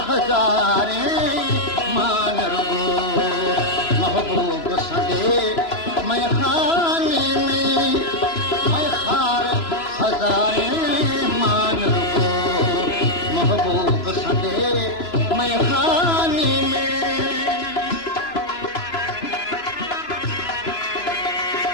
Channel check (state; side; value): late; right; 3.0 ms